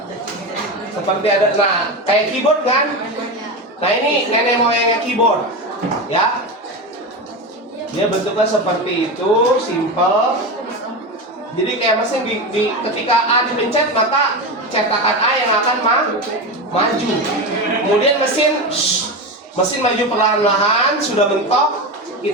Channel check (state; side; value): normal; both; correlation 0.20